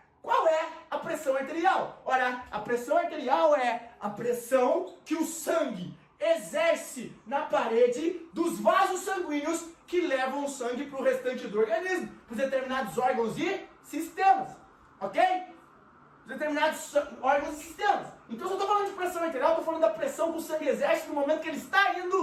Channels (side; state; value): both; identical; correlation 1.00